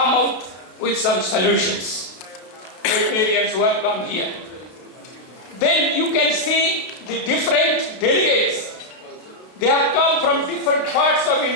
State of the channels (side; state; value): right; late; 32 ms